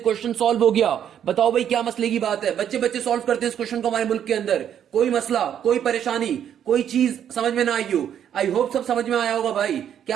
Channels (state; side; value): quieter; left; 9.5 dB